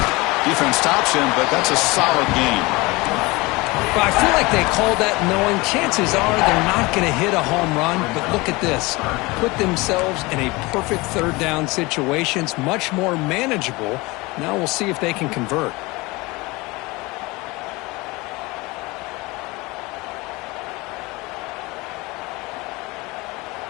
Defense stops him, but that's a solid gain. Well, I feel like they called that knowing chances are they're not going to hit a home run. But look at this. Put themselves in a perfect 3rd down situation. It's much more manageable. Now we'll see if they can convert.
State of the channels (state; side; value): quieter; right; 23.3 dB